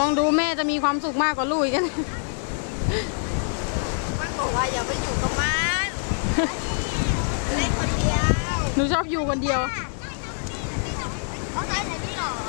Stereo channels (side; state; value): right; silent; 56 dB below the other